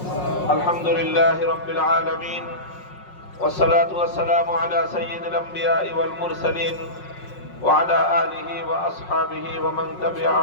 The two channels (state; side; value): late; right; 5.5 ms